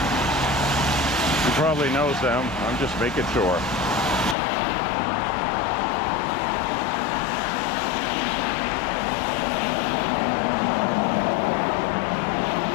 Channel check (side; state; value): right; drops out; at 4.4 s